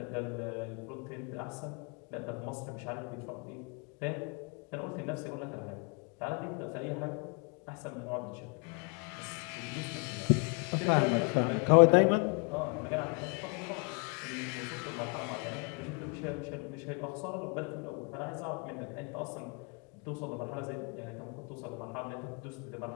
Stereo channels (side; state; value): right; quieter; 35.5 dB